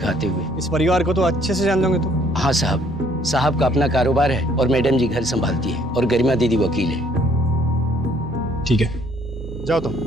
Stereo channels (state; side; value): normal; both; correlation 0.63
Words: आते हुए। इस परिवार को तो अच्छे से जान दोगे तुम? हाँ साहब, साहब का अपना कारोबार है और मैडम जी घर संभालती है और गरिमा दीदी वकील है। ठीक है, जाओ तुम।